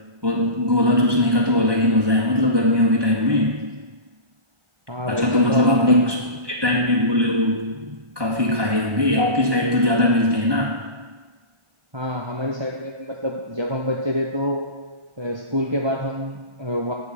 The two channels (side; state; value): left; late; 1.2 ms